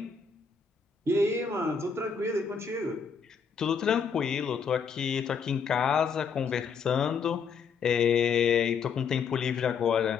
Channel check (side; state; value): right; quieter; 6.0 dB